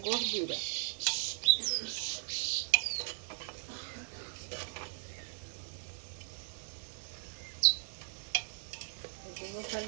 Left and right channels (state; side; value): silent; left; digital silence